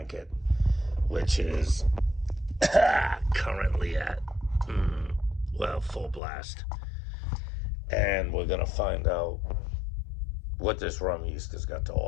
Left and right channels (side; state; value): right; drops out; at 6.2 s